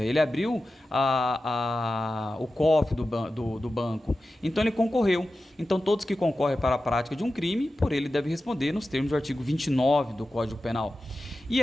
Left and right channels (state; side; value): normal; both; correlation 0.93